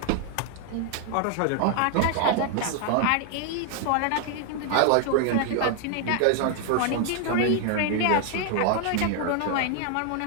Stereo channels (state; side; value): different; both; correlation 0.00